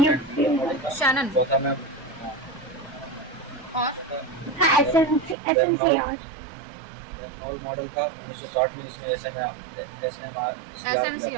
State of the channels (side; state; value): left; drops out; at 5.4 s